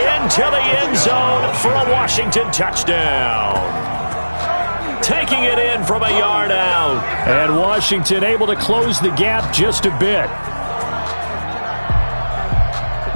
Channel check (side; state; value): both; inverted; correlation -1.00